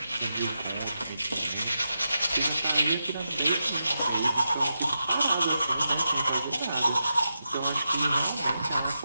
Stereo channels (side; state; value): both; inverted; correlation -0.87